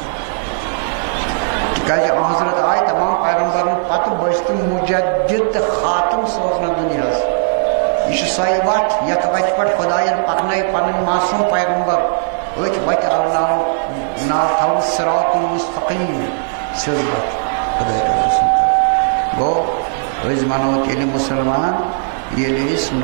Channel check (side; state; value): left; silent; digital silence